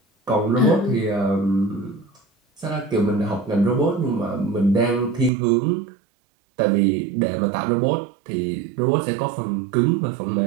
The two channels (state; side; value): drops out; left; at 5.3 s